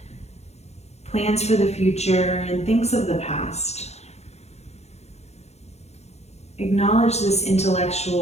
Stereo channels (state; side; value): late; right; 0.31 ms